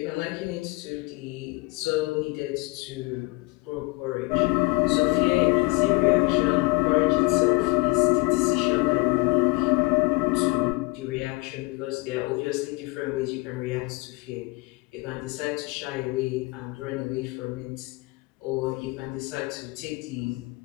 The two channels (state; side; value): quieter; right; 24.8 dB